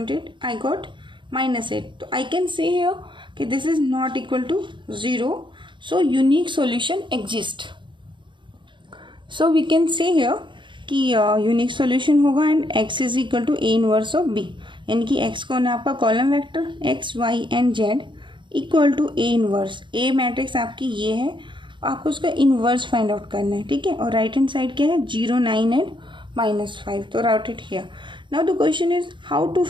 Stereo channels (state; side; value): late; left; 0.23 ms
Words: I got minus 8. So I can say here कि this is not equal to 0. So unique solution exists. So we can say here कि unique solution होगा and x is equal to a inverse of b, यानी कि x कौन है आपका column vector x y and z equal to a inverse. a matrix आपकी ये है, आपको उसका इनवर्स फाइंड आउट करना है. ठीक है. और राइट हैंड साइड क्या है 0 9 एंड -5. तो route it here. Now the question is how to